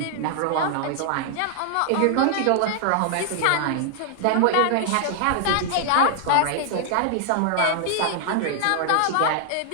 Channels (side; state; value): both; different; correlation 0.00